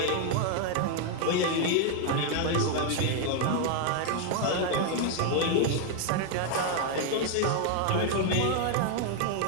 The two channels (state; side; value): different; both; correlation 0.00